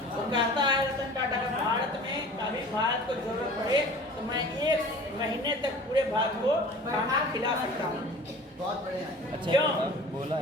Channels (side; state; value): both; normal; correlation 0.43